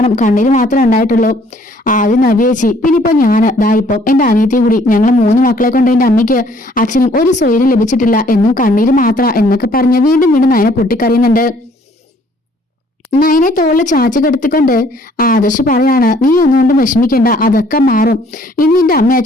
കണ്ണീര് മാത്രമേ ഉണ്ടായിട്ടുള്ളൂ. ആദ്യം നവ്യേച്ചി, പിന്നെ ഇപ്പൊ ഞാന് ദാ ഇപ്പം എന്റെ അനിയത്തിയും കൂടി, ഞങ്ങൾ 3 മക്കളെ കൊണ്ട് എന്റെ അമ്മയ്ക്ക് അച്ഛനും ഒരു സ്വൈര്യം ലഭിച്ചിട്ടില്ല, എന്നും കണ്ണീര് മാത്ര എന്നൊക്കെ പറഞ്ഞ് വീണ്ടും നയനെ പൊട്ടിക്കറിയുന്നുണ്ട്. നയനെ തോളിൽ ചാച്ചു കെടുത്തിക്കൊണ്ട് ആദർശ് പറയാണ്, നീ ഒന്നുകൊണ്ടും വിഷമിക്കണ്ട, അതൊക്കെ മാറും, ഇനി നിന്റെ അമ്മ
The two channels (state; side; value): normal; both; correlation 0.61